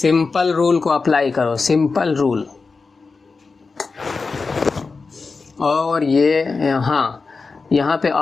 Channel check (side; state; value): right; quieter; 4.4 dB